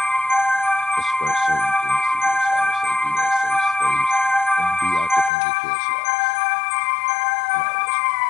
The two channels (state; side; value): drops out; right; at 5.3 s